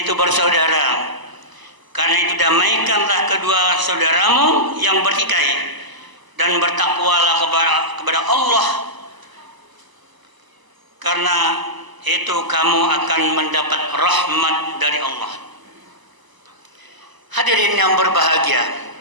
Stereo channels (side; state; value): left; late; 1.0 ms